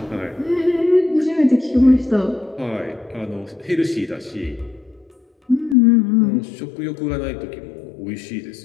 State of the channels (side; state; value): right; drops out; at 5.8 s